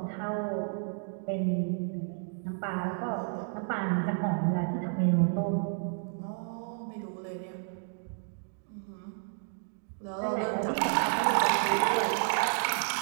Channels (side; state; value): left; silent; 57 dB below the other